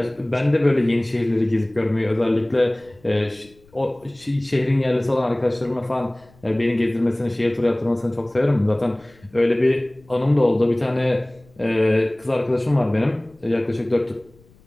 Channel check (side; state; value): left; noise; rumble, 29 dB below the sound